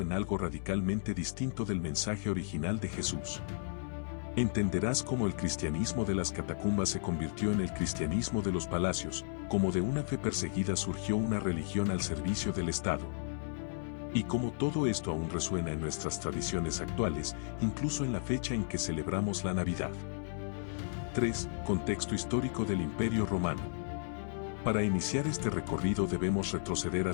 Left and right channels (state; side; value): silent; right; 55 dB below the other